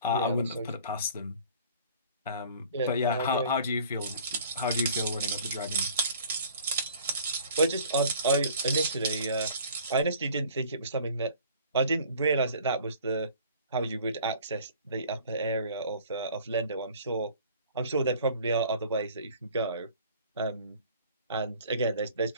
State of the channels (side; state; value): both; inverted; correlation -0.50